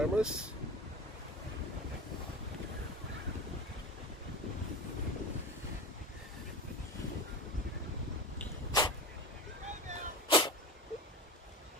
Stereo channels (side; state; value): both; normal; correlation 0.28